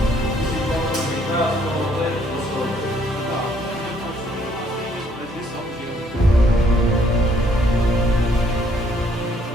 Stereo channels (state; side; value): normal; both; correlation 0.66